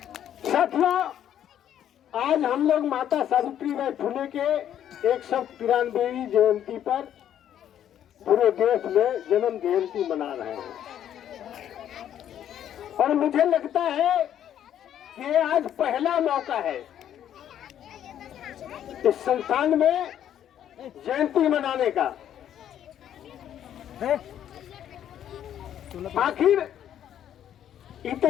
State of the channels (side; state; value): right; quieter; 10.4 dB